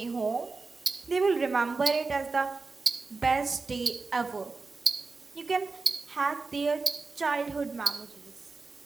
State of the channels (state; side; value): quieter; left; 4.1 dB